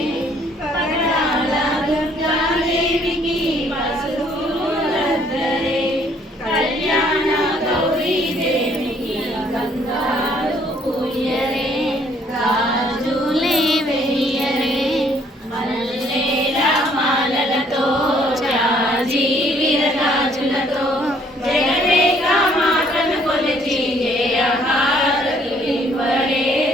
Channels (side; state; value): both; normal; correlation 0.63